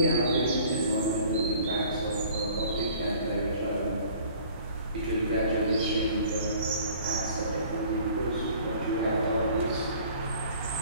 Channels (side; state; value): both; inverted; correlation -0.52